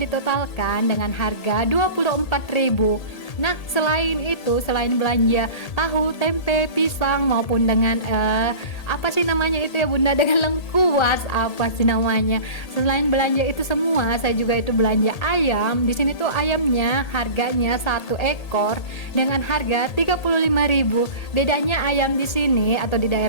dengan harga 24.000. Nah selain itu, selain belanja tahu, tempe, pisang maupun dengan apa sih namanya itu ya bunda, dengan lengkuas apa sih namanya, selain belanja itu semua saya juga itu belanja ayam. Di sini tuh ayamnya harganya 1 ekor dengan harga 35.000. Bedanya ayam di sini atau di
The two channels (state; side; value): late; right; 1.8 ms